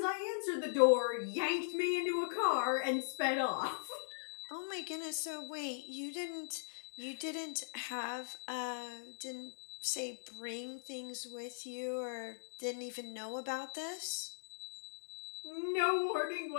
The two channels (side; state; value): right; silent; digital silence